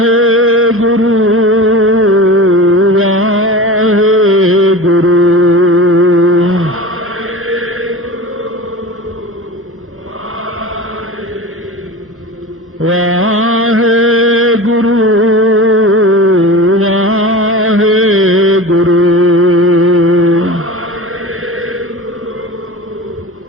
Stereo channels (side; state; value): both; normal; correlation 0.33